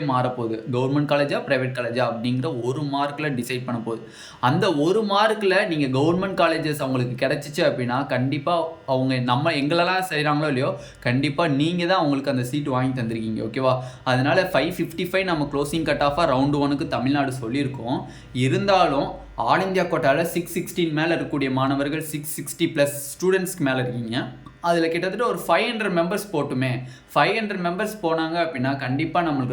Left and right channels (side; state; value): both; identical; correlation 1.00